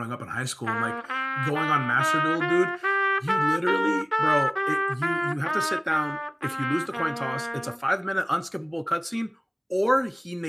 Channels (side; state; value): both; identical; correlation 1.00